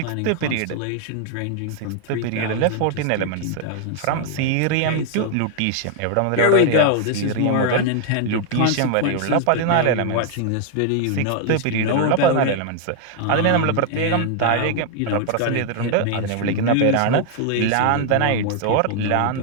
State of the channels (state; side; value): different; both; correlation 0.00